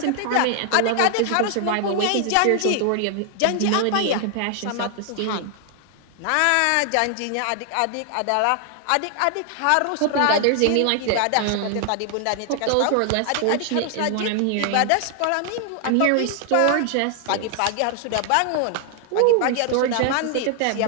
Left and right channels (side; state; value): both; different; correlation 0.00